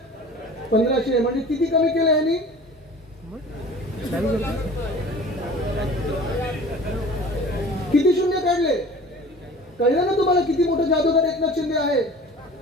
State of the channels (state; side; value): normal; both; correlation 0.43